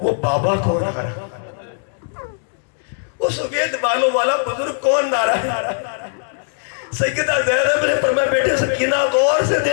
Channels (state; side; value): silent; right; digital silence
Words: وہ بابا کون آ رہا, وہ سفید بالوں والا بزرگ کون آ رہا. سیدہ زینب نے فرمایا بیٹے سکینہ غور سے